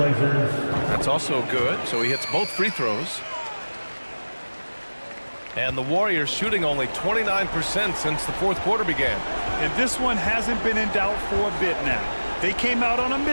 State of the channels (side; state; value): both; inverted; correlation -1.00